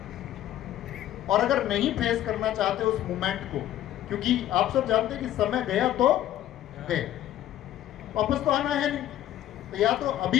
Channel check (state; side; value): quieter; right; 12.6 dB